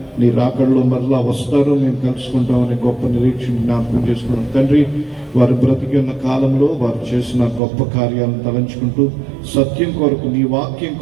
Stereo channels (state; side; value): drops out; left; at 7.6 s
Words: నీ రాకడలో మరలా వస్తారు, మేము కలుసుకుంటామని గొప్ప నిరీక్షణ జ్ఞాపకం చేసుకున్నాం తండ్రి. వారు బ్రతికిన కాలంలో వారు చేసిన గొప్ప కార్యాలను తలంచుకుంటూ సత్యం కొరకు, నీ వాక్యం